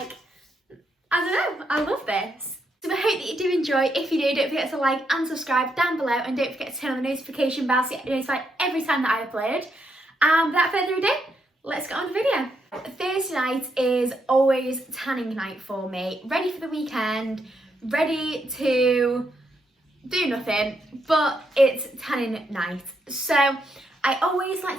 I don't know, I love this. So I hope that you do enjoy. If you do, don't forget to like and subscribe down below, and don't forget to turn on the notification bell so you get notified every time that I upload. And without further ado, let's get on with the video. Thursday night is always tanning night for me. Ready for the weekend, ready to do nothing, but it's tanning night. So I always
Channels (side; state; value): both; normal; correlation 0.79